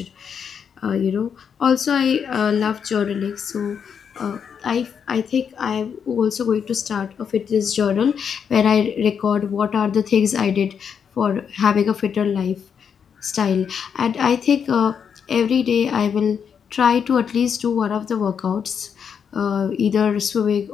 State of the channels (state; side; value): quieter; right; 7.2 dB